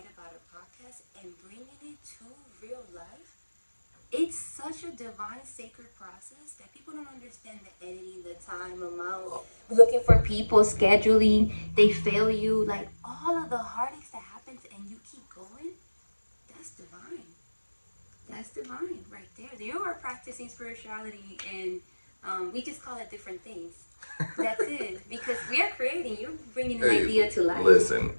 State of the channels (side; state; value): both; inverted; correlation -1.00